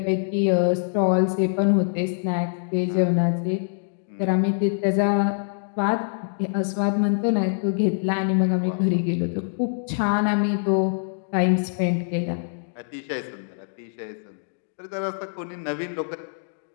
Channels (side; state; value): right; silent; digital silence